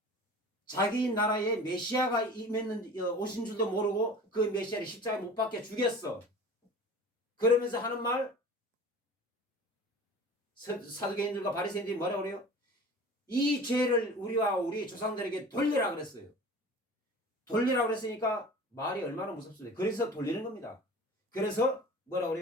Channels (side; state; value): both; normal; correlation 0.40